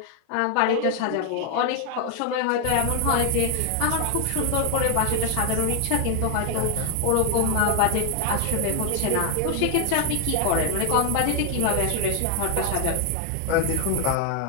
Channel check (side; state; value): both; different; correlation 0.00